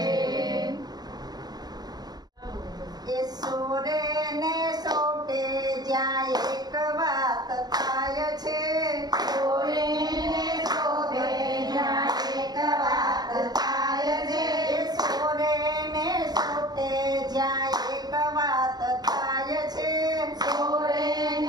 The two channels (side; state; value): left; late; 0.19 ms